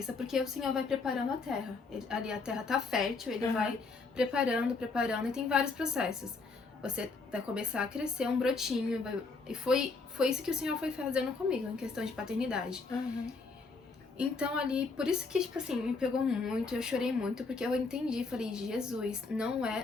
porque o Senhor vai preparando a terra. Ali a terra tá fértil, ele vai preparando, e tem vários processos. Você vai começar a crescer um brotinho, e foi isso que o Senhor foi fazendo comigo, em questão de paternidade. Então ali, por isso que, tipo assim, me pegou muito, eu chorei muito, porque eu entendi, falei, Jesus, não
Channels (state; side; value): quieter; right; 4.1 dB